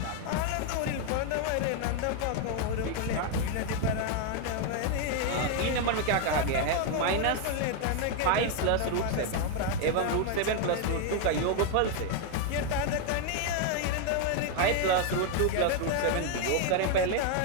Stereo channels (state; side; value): different; both; correlation 0.01